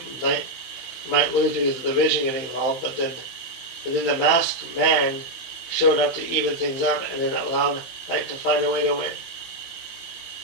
might lose because of the division getting involved, but then the masked man showed up to even things up, and then allowed Knight to find a way to win.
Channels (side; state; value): right; late; 15 ms